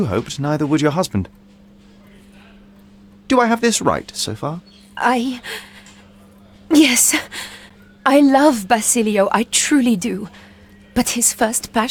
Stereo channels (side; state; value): both; identical; correlation 1.00